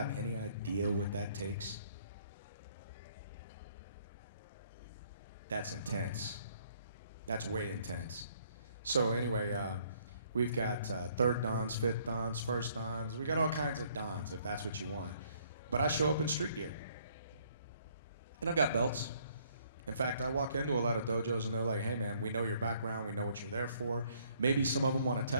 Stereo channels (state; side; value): inverted; both; correlation -0.64